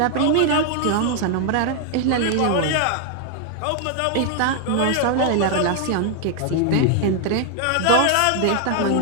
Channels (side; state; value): both; different; correlation 0.00